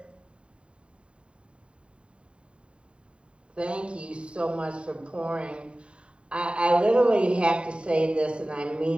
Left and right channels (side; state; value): left; late; 0.055 ms